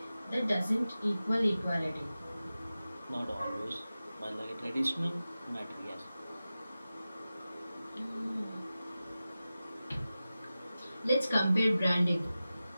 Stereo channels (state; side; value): inverted; both; correlation -0.95